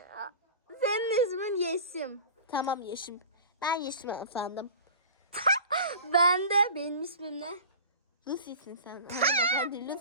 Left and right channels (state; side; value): inverted; both; correlation -0.37